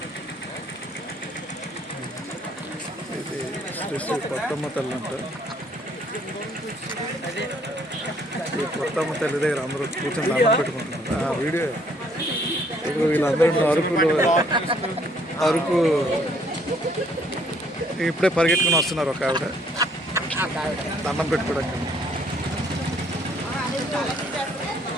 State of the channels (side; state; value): both; normal; correlation 0.64